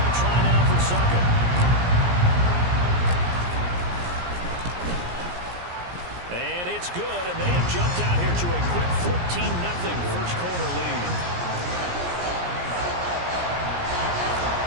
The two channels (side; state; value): left; late; 17 ms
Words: try now for Succop. And it's good, and they have jumped out here to a quick 14-0 first quarter lead.